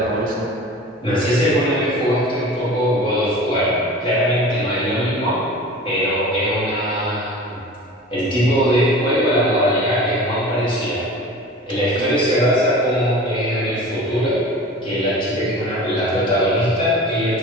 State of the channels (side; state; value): both; normal; correlation 0.38